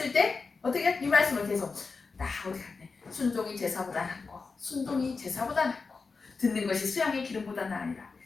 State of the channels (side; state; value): right; quieter; 4.5 dB